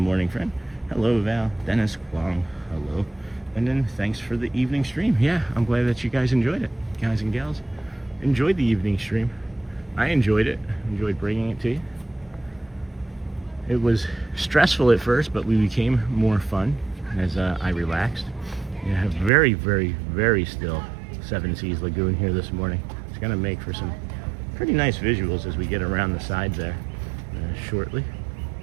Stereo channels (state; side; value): drops out; left; at 19.3 s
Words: friend. Hello, Val. Dennis, Kwong, hello. And then thanks for the evening stream. Yeah, I'm glad that you guys enjoyed it. Guys and gals, enjoyed the evening stream. I enjoyed it. Enjoyed bringing it to you. It was stressful at first, but we became more fun as I relaxed. You have very, very, very still Seven Seas Lagoon here this morning. It's going to make for some pretty nice visuals as we get around the sides there shortly.